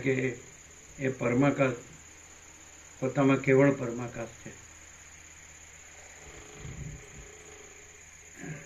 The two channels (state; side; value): identical; both; correlation 1.00